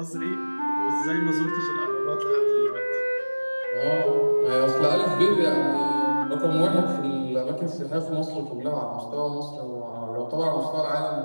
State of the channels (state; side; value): inverted; both; correlation -1.00